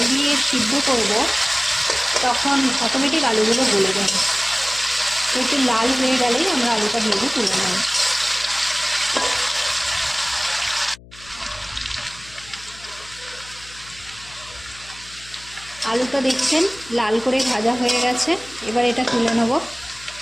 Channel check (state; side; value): noise; left; hum, 21 dB below the sound